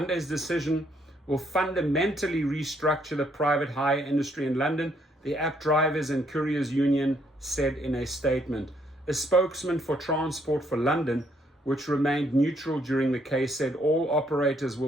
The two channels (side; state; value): both; normal; correlation 0.70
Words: decision will fundamentally restructure the private hire industry in London, the App Drivers and Couriers Union said in a statement. A spokesman for Transport for London, which remained neutral during the case, said all operators